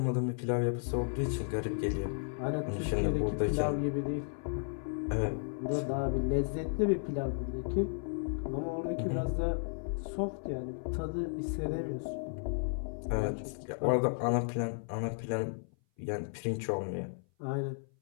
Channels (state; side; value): silent; right; 55 dB below the other